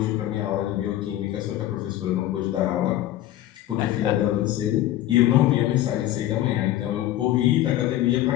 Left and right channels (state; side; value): quieter; right; 13.7 dB